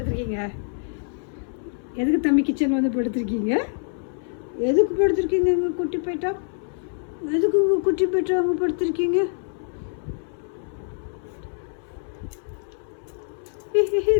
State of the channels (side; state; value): right; silent; 62 dB below the other